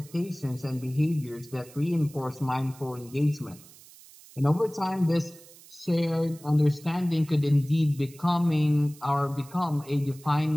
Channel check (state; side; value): noise; right; hiss, 22 dB below the sound